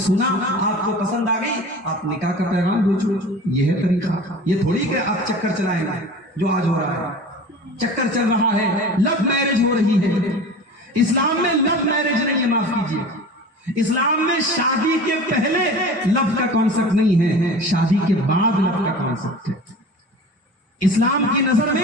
سنا، آپ کو پسند آ گئی، آپ نکاح کا پیغام بھیجو۔ یہ ہے طریقہ، یہ تھوڑی کہ آپ چکر چلائیں گے جو آج ہو رہا ہے۔ چکر چل رہا ہے، لو میرج ہو رہی ہے۔ اسلام میں لو میرج نہیں ہے، معاف کیجیے، اسلام میں شادی کے پہلے لو کا کانسیپٹ نہیں ہے، شادی کے بعد لو کا کانسیپٹ ہے۔ اسلام کی نظر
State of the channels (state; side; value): normal; both; correlation 0.38